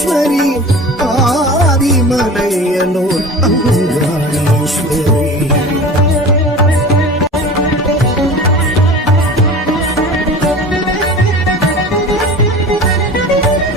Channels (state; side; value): normal; both; correlation 0.37